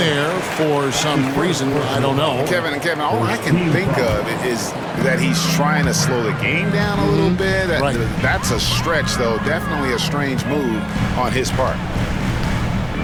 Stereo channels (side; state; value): both; identical; correlation 1.00